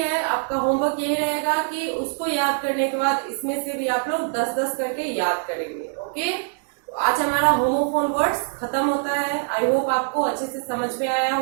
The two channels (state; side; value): silent; left; digital silence